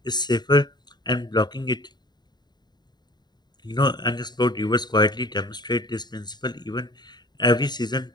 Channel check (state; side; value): late; right; 0.20 ms